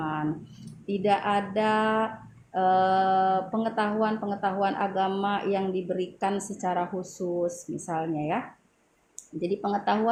tidak ada pengetahuan agama yang diberikan secara khusus misalnya ya. Jadi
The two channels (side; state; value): both; identical; correlation 1.00